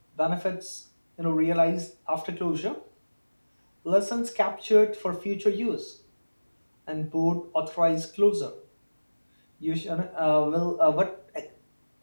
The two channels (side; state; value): both; inverted; correlation -1.00